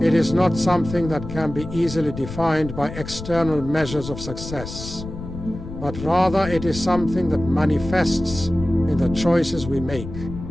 It is not something that can be easily defined by external measures of success, but rather it is something that manifests in the choices we make,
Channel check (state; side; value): noise; left; rumble, 10 dB below the sound